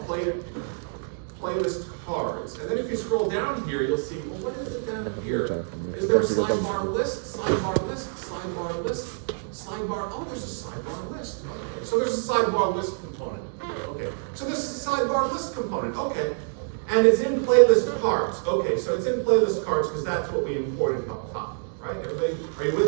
playlist cards. And then if you scroll down here, you'll see, well, what is it down here? Is there a sidebar list? Sidebar list? Sidebar list? Sidebar, oh, there's a sidebar list. Okay. So there's a sidebar list component. Okay. So this is a sidebar list component. Okay. And it's in playlist cards. Okay, so it's in playlist cards because that's what we imported up top, right? Everybody, are you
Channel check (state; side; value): silent; left; 61 dB below the other